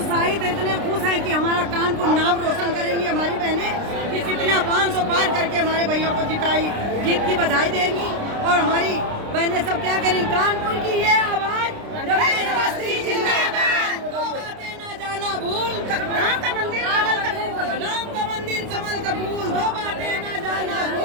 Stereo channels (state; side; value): late; left; 29 ms